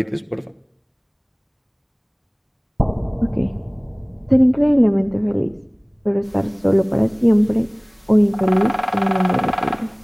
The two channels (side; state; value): both; identical; correlation 1.00